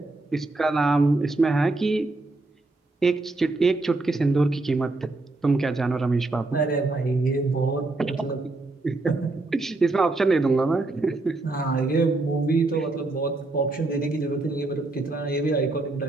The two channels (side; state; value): left; quieter; 3.1 dB